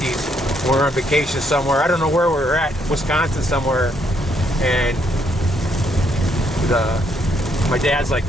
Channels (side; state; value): both; normal; correlation 0.72